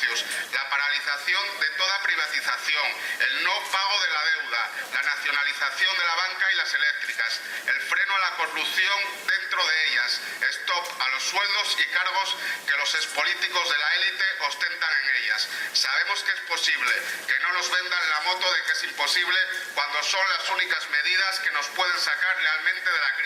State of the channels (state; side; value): identical; both; correlation 1.00